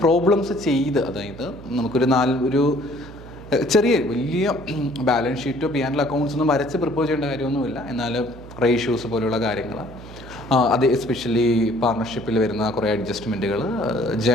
പ്രോബ്ലംസ് ചെയ്ത്, അതായത് നമുക്കൊരു വലിയ ബാലൻസ് ഷീറ്റോ P&L അക്കൗണ്ട്സ് ഒന്നും വരച്ച് പ്രിപ്പയർ ചെയ്യേണ്ട കാര്യമൊന്നുമില്ല. എന്നാൽ റേഷ്യോസ് പോലെയുള്ള കാര്യങ്ങൾ, അത് എസ്പെഷ്യലി പാർട്ണർഷിപ്പിൽ വരുന്ന കുറേ അഡ്ജസ്റ്റ്മെൻറ്റുകൾ,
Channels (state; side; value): noise; right; hum, 16 dB below the sound